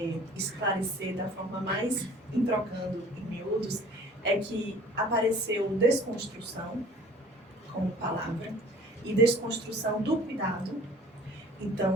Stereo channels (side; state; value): both; normal; correlation 0.49